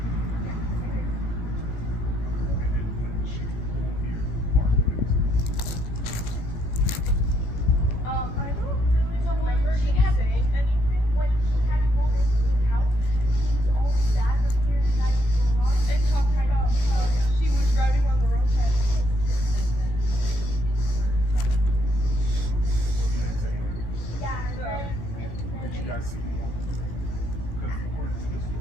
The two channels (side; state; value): right; late; 17 ms